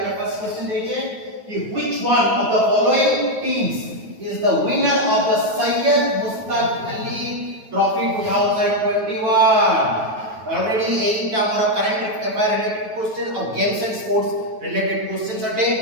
फर्स्ट क्वेश्चन देखिए कि which one of the following teams is the winner of the Syed Mushtaq Ali trophy 2021 already एटा हमर करंट अफेयर रिलेटेड क्वेश्चन और games and sports related questions अटे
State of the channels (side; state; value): left; late; 9.2 ms